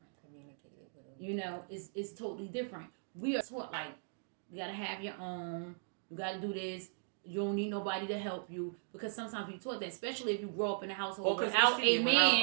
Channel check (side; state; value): left; silent; digital silence